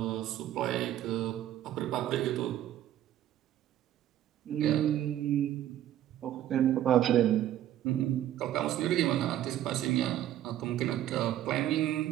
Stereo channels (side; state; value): left; quieter; 12.2 dB